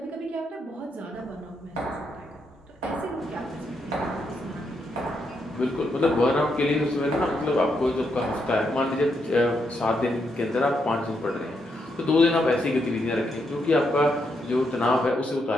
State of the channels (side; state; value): both; normal; correlation 0.79